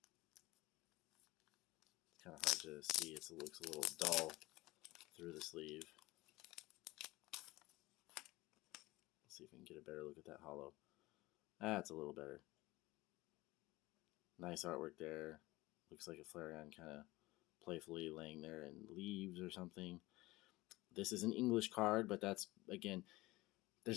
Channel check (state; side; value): quieter; right; 20.1 dB